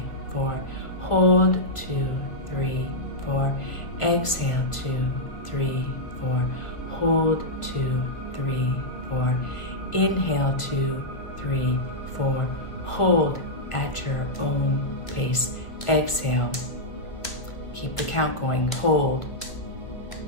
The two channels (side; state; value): right; late; 1.7 ms